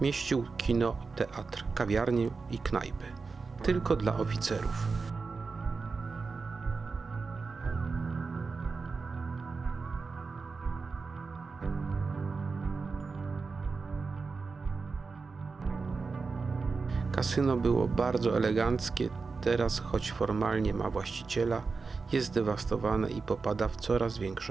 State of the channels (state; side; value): quieter; left; 4.5 dB